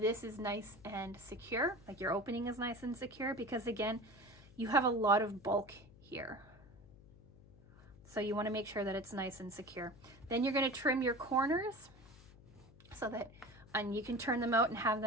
is nice and secure, like your opening is nice and secure, because again, you have a lot of bulk here. So you want to make sure that it's nice and secure. Then you're going to trim your corners so that, and you can turn them out and have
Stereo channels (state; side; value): noise; left; hum, 22 dB below the sound